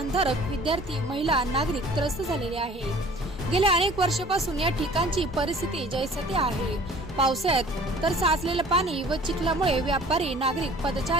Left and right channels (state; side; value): normal; both; correlation 0.49